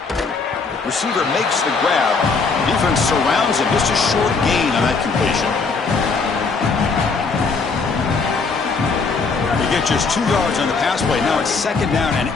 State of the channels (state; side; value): quieter; right; 4.6 dB